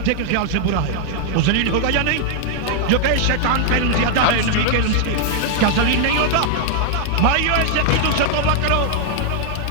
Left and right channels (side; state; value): both; different; correlation 0.00